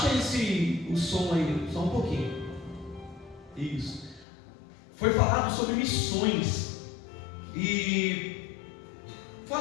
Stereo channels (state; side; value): drops out; right; at 4.2 s